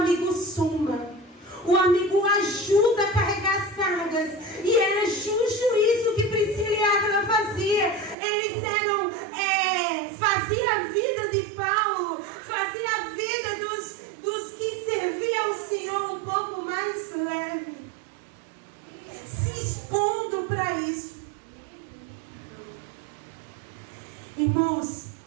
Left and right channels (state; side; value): drops out; left; at 8.2 s